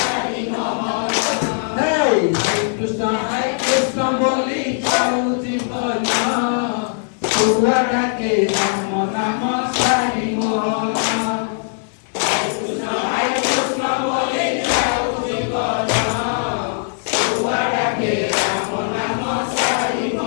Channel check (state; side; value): silent; right; digital silence